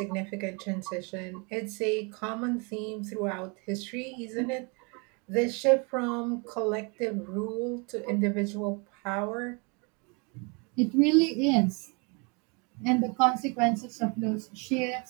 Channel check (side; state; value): left; quieter; 32.2 dB